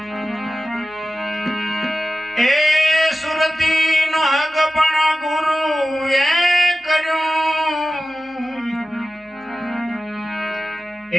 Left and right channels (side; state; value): both; normal; correlation 0.95